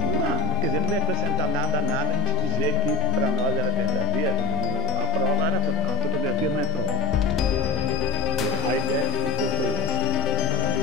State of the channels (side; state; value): right; quieter; 3.1 dB